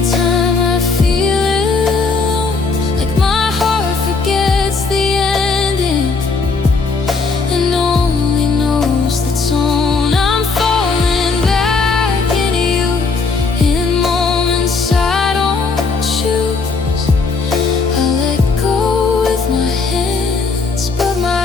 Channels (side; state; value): right; quieter; 4.3 dB